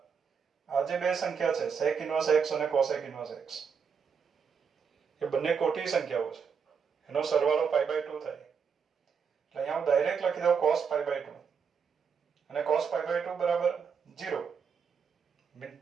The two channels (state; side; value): quieter; left; 6.4 dB